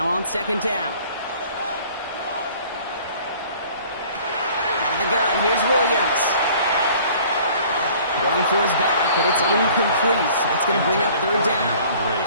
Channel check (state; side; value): inverted; both; correlation -0.52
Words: on 2nd down. Out of the gun, here's Williams. Going for his back, but it's incomplete. That's going to bring up 3rd down.